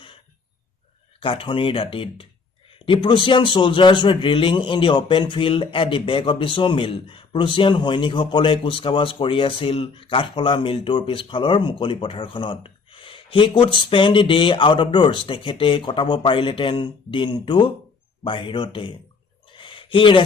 কাঠনিৰ দাঁতিত The Prussian soldiers were drilling in the open field at the back of the sawmill. Prussian সৈনিকসকলে কুচকাৱাজ কৰি আছিল কাঠফলা মিলটোৰ পিছফালৰ মুকলি পথাৰখনত He could spend the day out of doors. তেখেতে কটাব পাৰিলেতেন দিনটো বাহিৰতে He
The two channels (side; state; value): right; quieter; 4.8 dB